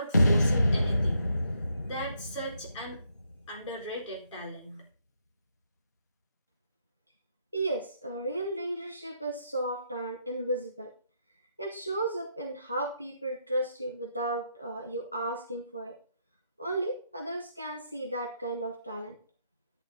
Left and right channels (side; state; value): both; inverted; correlation -0.76